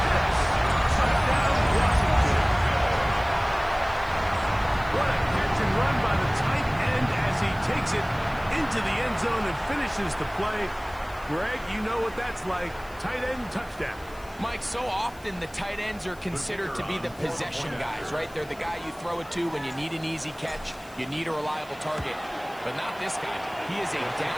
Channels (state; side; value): noise; left; hiss, 24 dB below the sound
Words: Pitts. Touchdown, Washington. What a catch and run by the tight end as he takes it into the end zone and finishes the play. Greg, you know what that's like. Tight end touchdown. Mike, so often the tight ends are considered to be the possession guys, right? They're the guy you throw it to when you need an easy catch, you need a reliable target. But not this guy. He is a